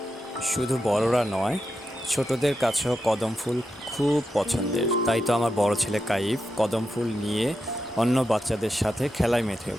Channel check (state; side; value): normal; both; correlation 0.87